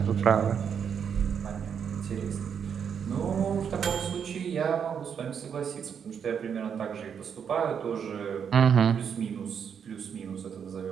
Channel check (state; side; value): quieter; left; 7.5 dB